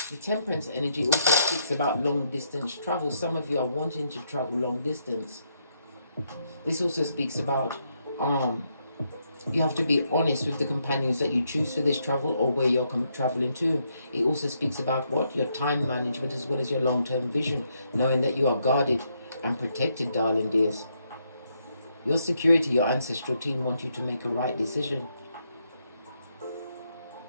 Temperance energy also speaks about long distance travel. Some of you are wanting to travel long distance. This also speaks about you have to be honest with the companions that you choose for this travel or where you're traveling to. It also speaks about what? Your time management as well as your long-term vision, knowing that you are guarded and protected, darling dears. Your security, your ancestral team want you to make a right decision.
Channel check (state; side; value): inverted; both; correlation -0.77